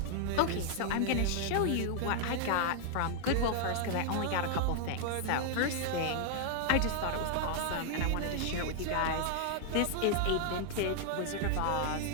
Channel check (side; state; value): both; different; correlation -0.01